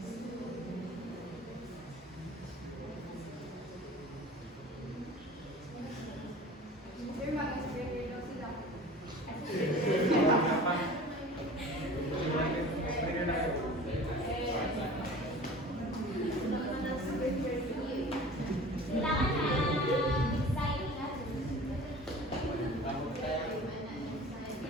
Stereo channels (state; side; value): normal; both; correlation 0.41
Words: Sir, mag-explain daw sila.